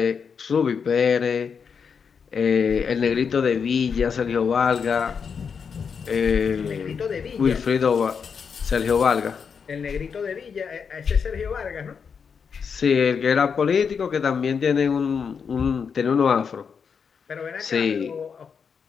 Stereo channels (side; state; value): right; quieter; 6.3 dB